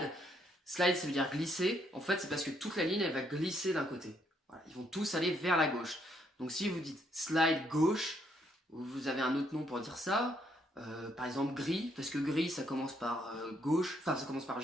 Slide, ça veut dire glisser. En fait, c'est parce que toute la ligne, elle va glisser d'un côté. Voilà, ils vont tous aller vers la gauche. Donc, si vous dites slide gauche, vous avez un autre nom pour dire ça. Par exemple gris, parce que gris ça commence par gauche, enfin ça commence par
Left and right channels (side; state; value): both; normal; correlation 0.72